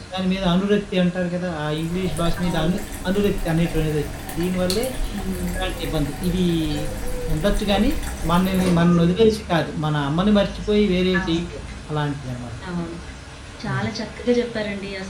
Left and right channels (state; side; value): identical; both; correlation 1.00